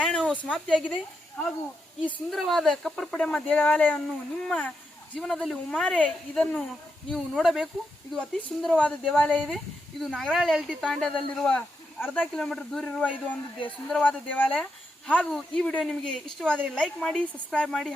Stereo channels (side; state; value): both; normal; correlation 0.84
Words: ಸಮಾಪ್ತಿಯಾಗಿದೆ. ಹಾಗೂ ಈ ಸುಂದರವಾದ ಕಪ್ಪರ್ ಪಡೆಮ ದೇವಾಲಯವನ್ನು ನಿಮ್ಮ ಜೀವನದಲ್ಲಿ ಒಮ್ಮಾರೆ ಇದನ್ನು ನೀವು ನೋಡಬೇಕು. ಇದು ಅತಿ ಸುಂದರವಾದ ದೇವಾಲಯ ಇದೆ. ಇದು ನಾಗರಾಳ ಎಲ್ ಟಿ ತಾಂಡದಲ್ಲಿರುವ ಅರ್ಧ ಕಿಲೋಮೀಟರ್ ದೂರ ಇರುವ ಇದು ಒಂದು ಸುಂದರವಾದ ದೇವಾಲಯ. ಹಾಗೂ ಈ ವಿಡಿಯೋ ನಿಮಗೆ ಇಷ್ಟವಾದರೆ ಲೈಕ್ ಮಾಡಿ, ಸಬ್ಸ್ಕ್ರೈಬ್ ಮಾಡಿ